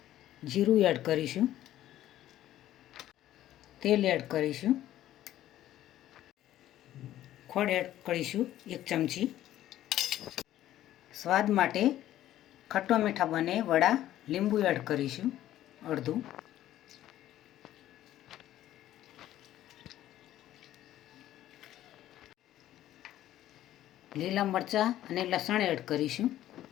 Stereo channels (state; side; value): quieter; right; 13.2 dB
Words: જીરું એડ કરીશું, તેલ એડ કરીશું, ખોળ એડ કરીશું 1 ચમચી। સ્વાદ માટે ખટ્ટા મીઠા બને વડા લીંબુ એડ કરીશું અડધું। લીલા મરચાં અને લસણ એડ કરીશું।